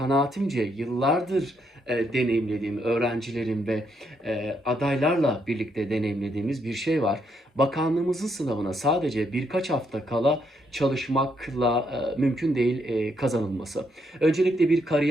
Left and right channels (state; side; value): normal; both; correlation 0.75